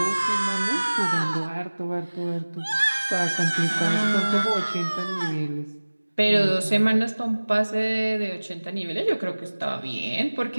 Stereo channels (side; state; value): both; inverted; correlation -1.00